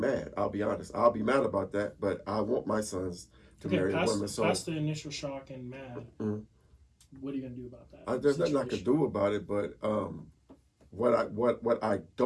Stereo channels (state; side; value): identical; both; correlation 1.00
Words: I'll be honest. I'll be mad about that. But I want my sons to marry a woman. So past the initial shock and mad. Mhm. What are you gonna do about that? There's nothing I could do about it. But what I